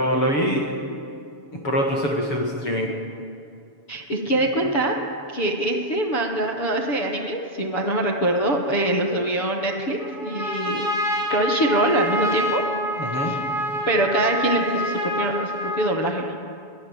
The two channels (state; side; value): late; right; 7.0 ms